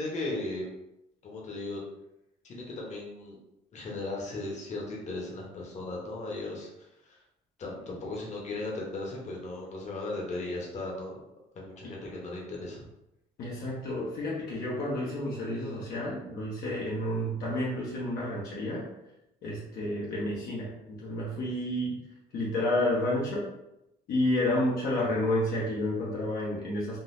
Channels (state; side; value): normal; both; correlation 0.56